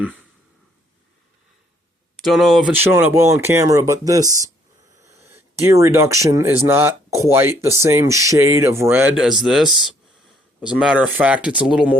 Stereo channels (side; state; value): both; normal; correlation 0.66